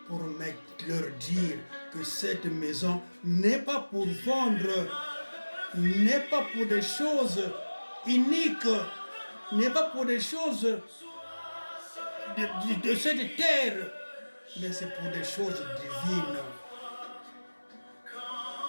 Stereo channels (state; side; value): inverted; both; correlation -1.00